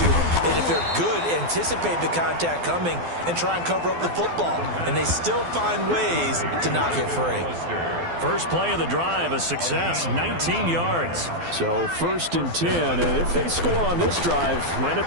and if they're good, anticipate the contact coming and try and cover up the football. And they still find ways to knock it free. First play of the drive, a success, 19 yards. So 1st and 10, and if they score on this drive, might have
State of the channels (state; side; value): late; left; 12 ms